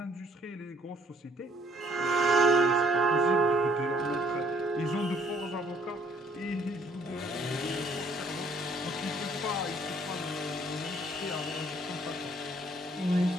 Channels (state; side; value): normal; both; correlation 0.62